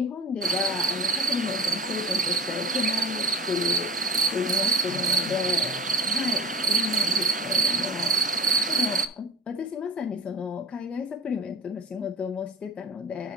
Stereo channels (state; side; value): normal; both; correlation 0.32